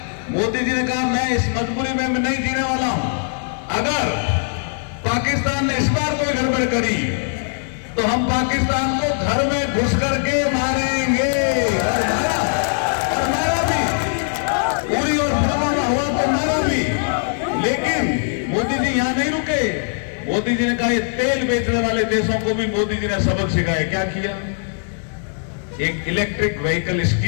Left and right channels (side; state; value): right; silent; digital silence